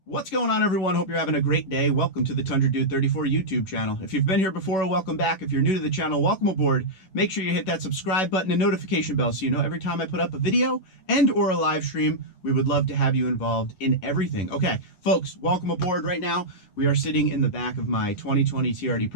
What's going on, everyone? Hope you're having a great day. Welcome to the Tundra Dude 34 YouTube channel. If you've been here before, welcome back. If you're new to the channel, welcome aboard. Make sure you hit that subscribe button and notification bell so you know every time I put up a video and or a live stream. We would love to have you involved in everything. Okay, folks, welcome aboard. Right now, we are sitting in the back of my 2020 TRD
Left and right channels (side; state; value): right; late; 11 ms